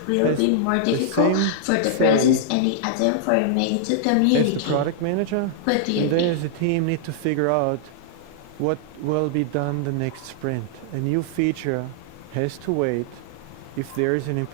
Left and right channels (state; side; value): different; both; correlation -0.01